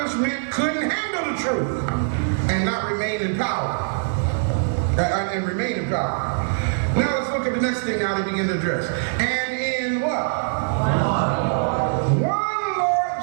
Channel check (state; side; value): silent; left; digital silence